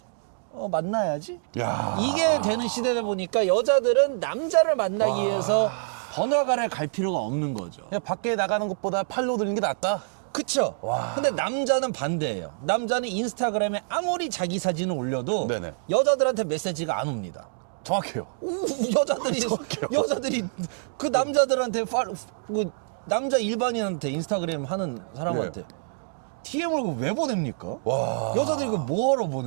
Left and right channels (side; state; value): left; silent; digital silence